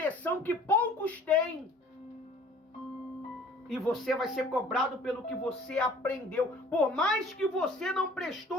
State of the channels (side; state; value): both; normal; correlation 0.51